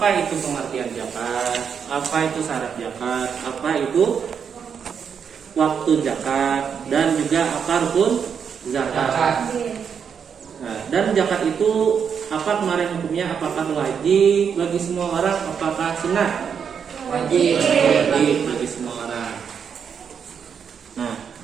itu pengertian zakat, apa itu syarat zakat, apa itu waktu zakat, dan juga apa rukun zakat. Yes. Nah, dan zakat itu apa kemarin hukumnya? Apakah wajib bagi semua orang? Apakah sunnah? wajib. Wajib bagi semua orang. Nah,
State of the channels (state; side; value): quieter; left; 7.1 dB